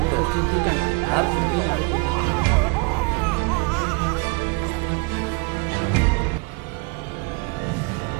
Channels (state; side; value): quieter; left; 30.7 dB